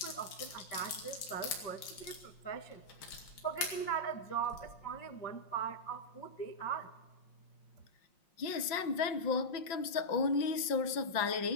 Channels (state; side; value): late; right; 5.6 ms